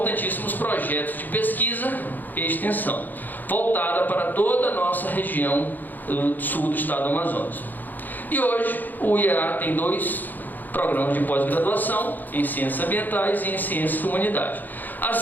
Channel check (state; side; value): late; right; 0.086 ms